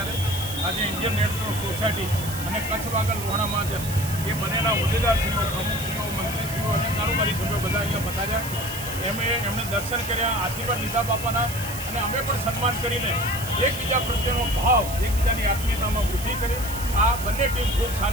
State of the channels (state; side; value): noise; right; hiss, 9 dB below the sound